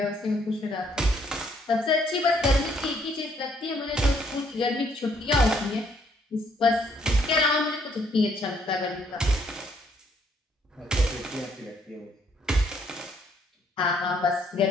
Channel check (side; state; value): both; normal; correlation 0.68